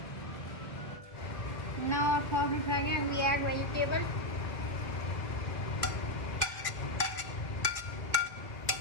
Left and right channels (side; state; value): right; late; 1.4 ms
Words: Now our sauce is ready and we add vegetable.